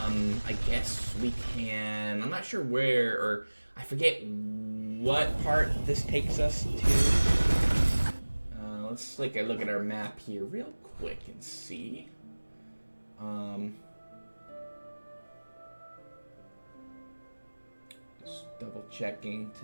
I guess we can. I'm not sure where, or I forget what part this takes us to. Let's take a look at our map here real quick and see. Just double checking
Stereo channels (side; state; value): both; inverted; correlation -1.00